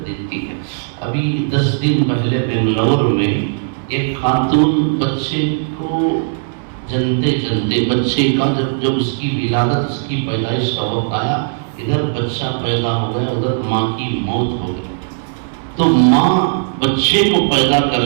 دیتی ہے۔ ابھی 10 دن پہلے بنگلور میں ایک خاتون بچے کو جنتے جنتے، بچے کا جب اس کی ولادت، اس کی پیدائش کا وقت آیا، ادھر بچہ پیدا ہو گیا، ادھر ماں کی موت ہو گئی۔ تو ماں بچے کو پیدا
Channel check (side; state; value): left; silent; digital silence